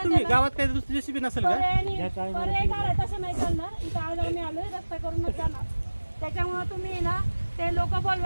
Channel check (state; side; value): inverted; both; correlation -1.00